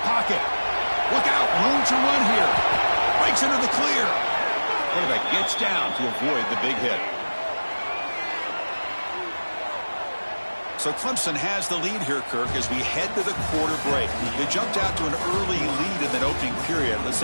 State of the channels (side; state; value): both; inverted; correlation -1.00